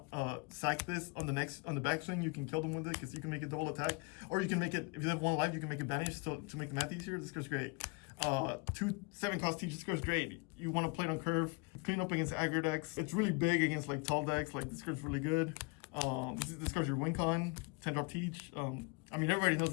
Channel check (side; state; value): right; quieter; 28.8 dB